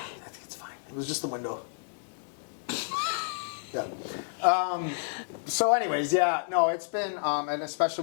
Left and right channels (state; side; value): silent; right; 58 dB below the other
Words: think it's fine. It was just the window. Yeah. So anyways, yeah, no, it's been, and